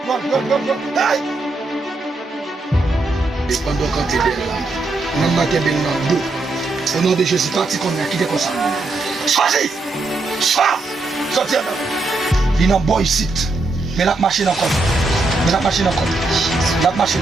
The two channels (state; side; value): quieter; left; 3.2 dB